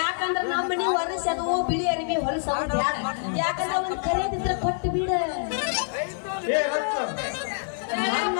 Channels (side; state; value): right; silent; 57 dB below the other